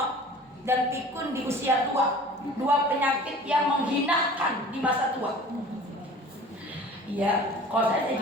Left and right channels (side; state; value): both; normal; correlation 0.44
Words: dan pikun di usia tua, dua penyakit yang menghinakan di masa tua. Iya, kalau saya